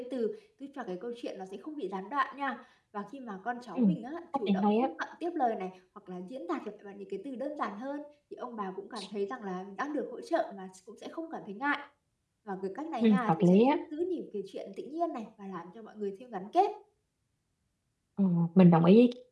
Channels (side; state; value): both; identical; correlation 1.00